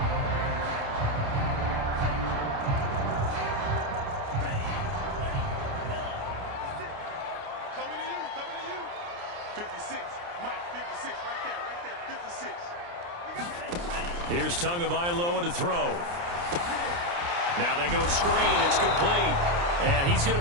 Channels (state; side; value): late; left; 29 ms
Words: Here's Tagovailoa to throw. Now they go screen. It's complete. And he's going